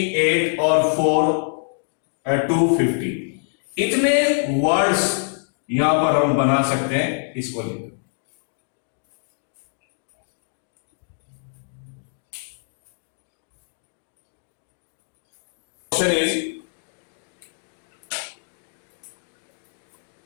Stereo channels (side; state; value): right; silent; digital silence